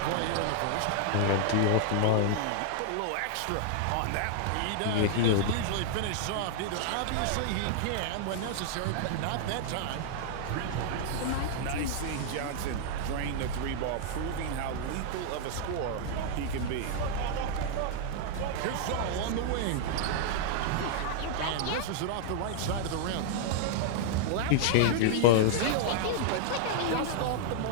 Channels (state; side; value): different; both; correlation -0.01